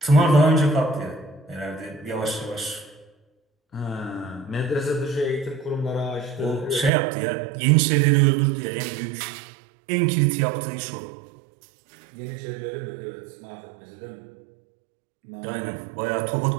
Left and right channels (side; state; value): left; drops out; at 6.9 s